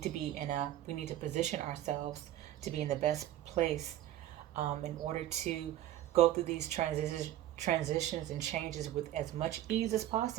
to position ourselves to be in the best place in order to go through these transitions and changes with as much ease as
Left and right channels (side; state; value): left; quieter; 13.0 dB